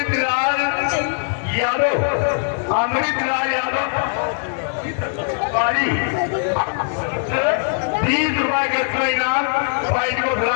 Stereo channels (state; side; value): silent; right; digital silence